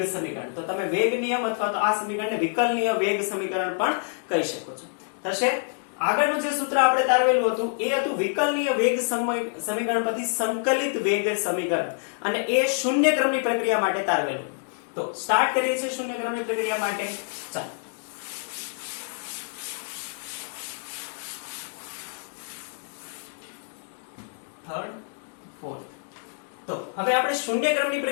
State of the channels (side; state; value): right; silent; 58 dB below the other